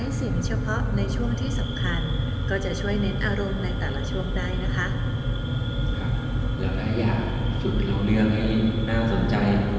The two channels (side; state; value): both; identical; correlation 1.00